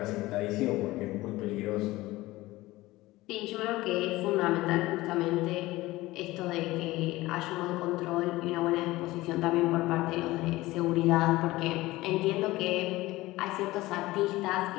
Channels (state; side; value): quieter; right; 18.7 dB